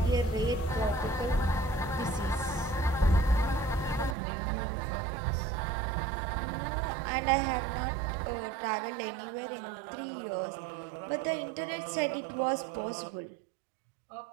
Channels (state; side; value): drops out; left; at 4.2 s